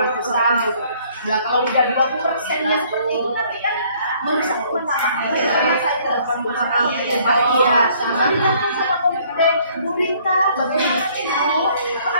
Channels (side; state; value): both; inverted; correlation -0.61